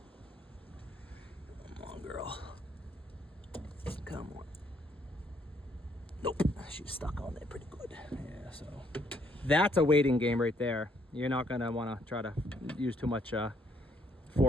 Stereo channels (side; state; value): both; normal; correlation 0.69